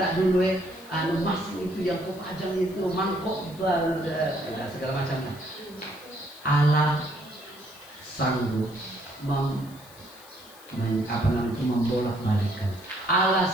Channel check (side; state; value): left; noise; hiss, 22 dB below the sound